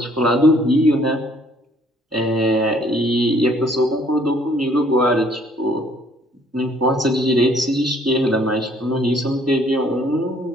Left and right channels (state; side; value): normal; both; correlation 0.62